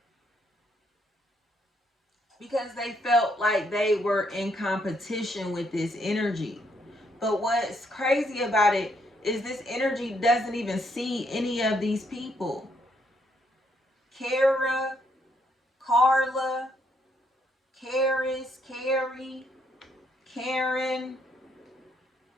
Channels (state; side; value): normal; both; correlation 0.73